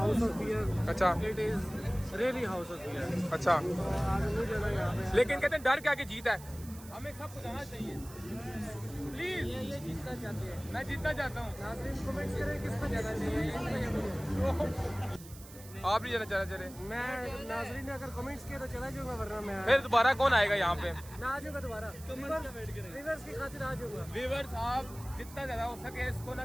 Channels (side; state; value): right; noise; hiss, 18 dB below the sound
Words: ऑफेयर, अच्छा, it is really house off air. अच्छा, तो आगे नहीं जाना यहाँ पे। लेकिन कहते हैं डर के आगे जीत है। हमें सबको जाना चाहिए प्लीज। ये जीतना चाहते हैं। मैं जीतना चाहता हूँ। नाज़रीन कमेंट्स करें किसको जाना चाहिए। आप नहीं जाना चाह रहे? मैं नाज़रीन ने अगर कमेंट्स किए तो चला जाऊंगा, वरना मैं फिर दोबारा कौन आएगा यहाँ पे? मैं आ जाऊंगा दोबारा। व्यूअर्स की खातिर आ जाऊंगा। व्यूअर्स आप जितना ज़्यादा हो सके इसको ना